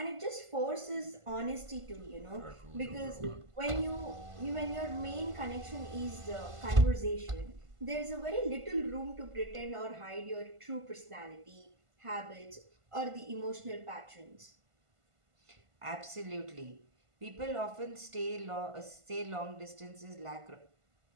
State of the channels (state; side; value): late; left; 1.5 ms